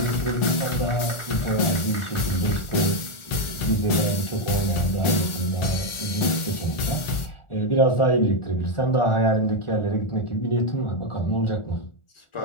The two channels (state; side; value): late; right; 1.4 ms